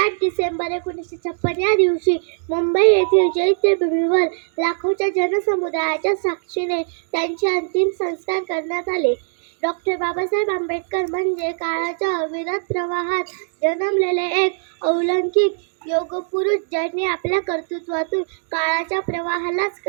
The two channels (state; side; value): silent; left; digital silence